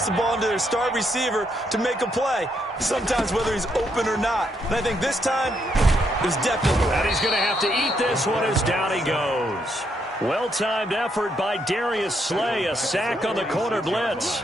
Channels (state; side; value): normal; both; correlation 0.76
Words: the ball into their star receiver to make a play. Sometimes whether he's open or not. And I think this time, it was definitely. And he's going to have to eat this one as down he goes. Well-timed effort by Darius Slay. A sack on the corner blitz.